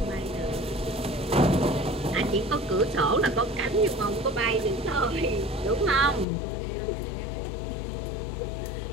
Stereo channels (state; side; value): drops out; right; at 6.2 s